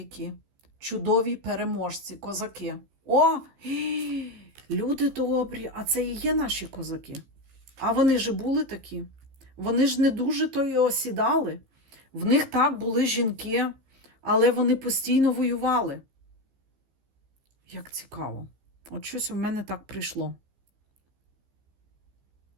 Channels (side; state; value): left; late; 15 ms